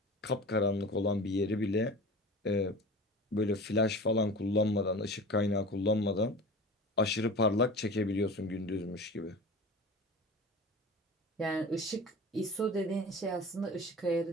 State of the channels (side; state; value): both; normal; correlation 0.36